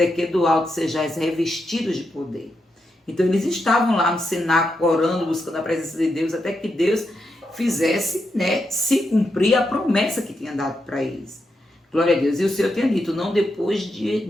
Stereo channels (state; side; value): normal; both; correlation 0.84